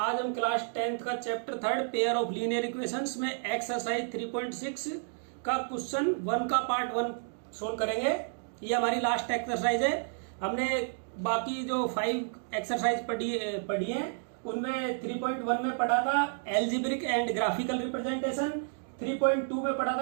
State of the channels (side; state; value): left; silent; digital silence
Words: हम class 10th का chapter 3 pair of linear equations में exercise 3.6 का क्वेश्चन 1 का पार्ट 1 सोल्व करेंगे। ये हमारी लास्ट एक्सरसाइज है। हमने बाकी जो 5 एक्सरसाइज पढ़ी हैं उनमें 3.1 में पढ़ा था एल्जेब्रिक एंड ग्राफिकल रिप्रेजेंटेशन, 3.2 में पढ़ा